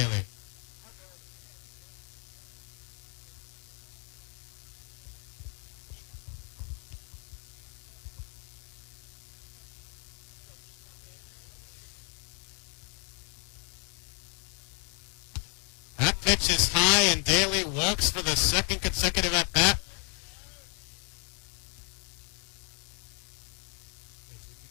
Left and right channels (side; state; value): right; quieter; 37.0 dB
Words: That pitch is high, and Daly walks for the second consecutive at-bat.